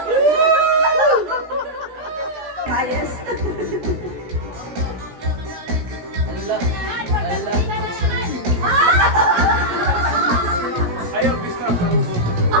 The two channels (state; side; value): late; left; 17 ms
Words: Ayos. Ayaw, bisna sa ubos.